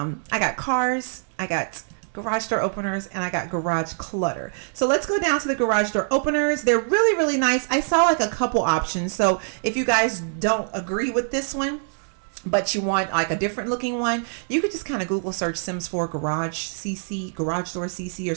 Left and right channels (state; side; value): silent; left; digital silence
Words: got cars, I got garage door openers, and I got garage clutter. So let's go down to the garage door openers. They're really, really nice. I saw like a couple options. So if you guys don't agree with this one, but you want like a different looking one, you could just kind of Google search Sims 4 garage CC, garage door CC, or